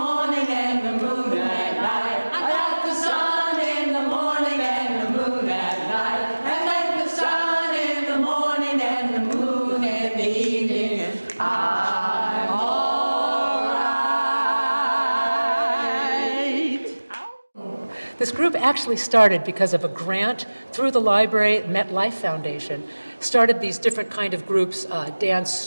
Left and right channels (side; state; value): both; inverted; correlation -1.00